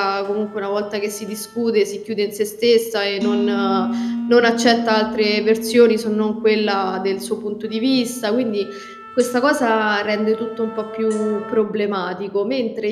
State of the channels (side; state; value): both; identical; correlation 1.00